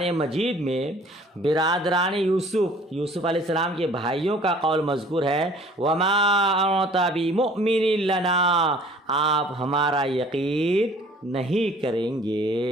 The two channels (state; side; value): normal; both; correlation 0.52